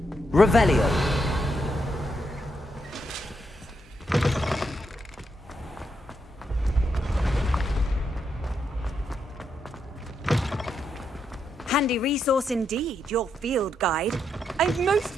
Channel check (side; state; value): both; normal; correlation 0.80